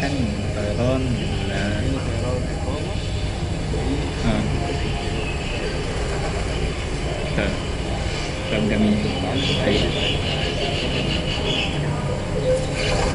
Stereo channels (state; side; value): identical; both; correlation 1.00